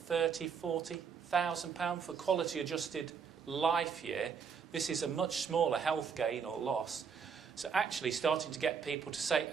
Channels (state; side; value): quieter; left; 6.4 dB